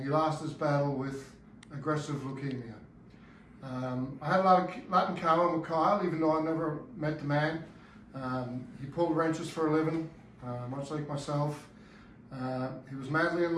he lost his battle with aggressive leukemia. I had a lot in common with Kyle, even though I never met the man. He pulled wrenches for a living, much like myself. He was madly in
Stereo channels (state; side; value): identical; both; correlation 1.00